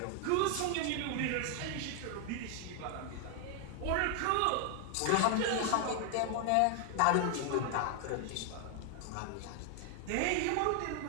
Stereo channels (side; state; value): both; different; correlation 0.00